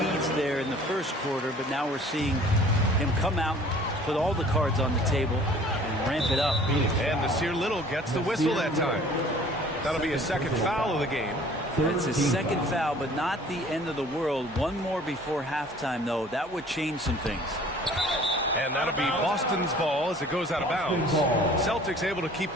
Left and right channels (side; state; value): both; normal; correlation 0.51